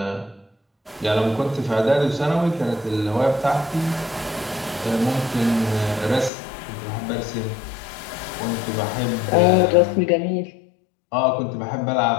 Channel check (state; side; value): drops out; right; at 6.3 s